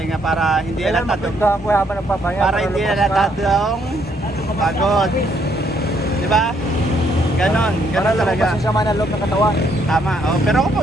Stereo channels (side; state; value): both; normal; correlation 0.70